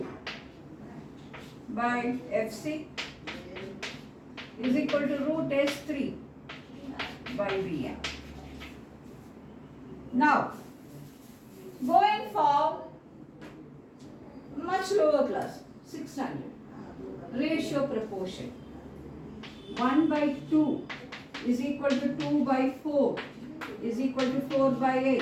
by FC is equal to root S3 by BM. Now, going for much lower class, 6 standard, ratio proportion. 1 by 2 is equal to 2 by 4 is equal to 4 by 8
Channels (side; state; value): both; identical; correlation 1.00